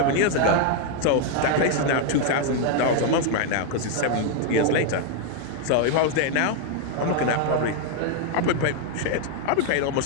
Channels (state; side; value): different; both; correlation 0.00